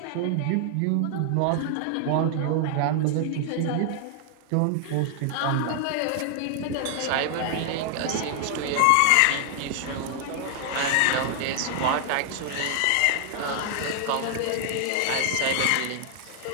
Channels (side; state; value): both; different; correlation 0.00